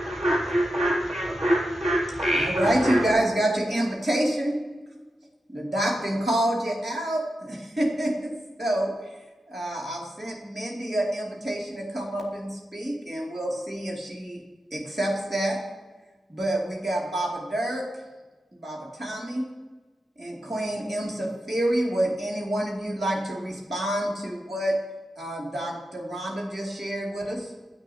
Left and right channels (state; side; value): normal; both; correlation 0.89